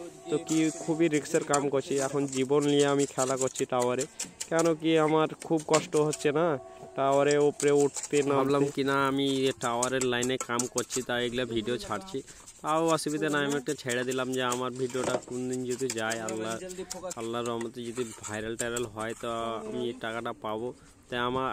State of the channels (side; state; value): both; identical; correlation 1.00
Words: তো কি খুবই রিস্কের কাম করছি, এখন জীবন নিয়ে আমি খেলা করছি টাওয়ারে। কেন কি আমার খুব কষ্ট হচ্ছে না টাওয়ারে উপরে উঠতে, নামলাম কিনা আমি টাওয়ারের লাইনে কাম করছি, তাই এগুলো ভিডিও ছাড়ছি। তাও অসুবিধা নাই, আমি একটা ছেড়ে দিলাম যে আমার ভিডিওটা কোন দিন যদি যায়, আল্লাহর রহমতে যদি ভাইরাল হয়, তো আমি টাকাটা পাবো। তাই আমার